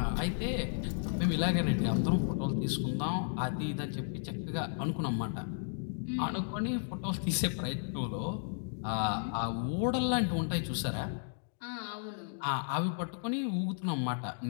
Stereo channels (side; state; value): right; silent; digital silence